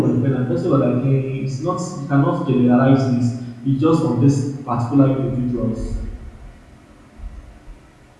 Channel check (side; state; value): both; identical; correlation 1.00